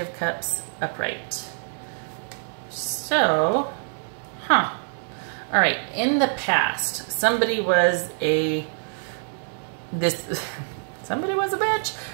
Cups upright. So, all right, in the past, somebody was a bitch,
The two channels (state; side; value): silent; left; 62 dB below the other